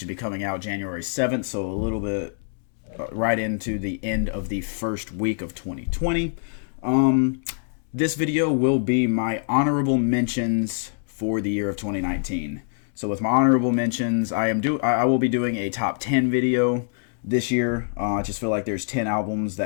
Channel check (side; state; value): right; silent; digital silence